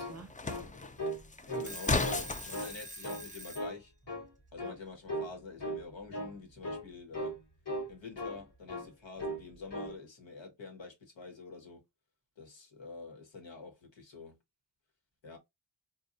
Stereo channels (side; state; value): both; normal; correlation 0.01